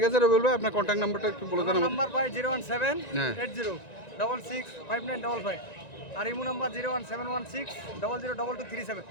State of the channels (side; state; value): right; late; 1.9 ms